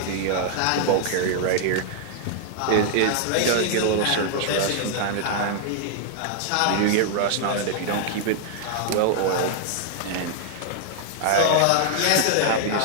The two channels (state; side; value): different; both; correlation -0.01